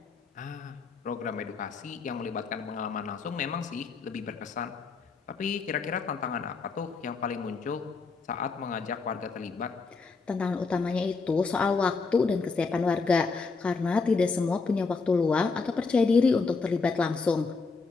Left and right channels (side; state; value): right; quieter; 4.5 dB